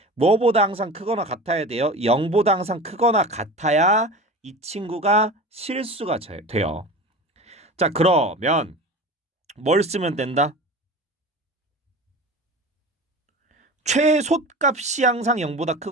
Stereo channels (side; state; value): both; normal; correlation 0.33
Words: 뭐보다 항상 크거나 같아야 돼요? 0보다 항상 크거나 같아야 이 친구가 실수가 돼요. 자, 그러면 뭘 쓰면 된다? 최소값이 항상 0보다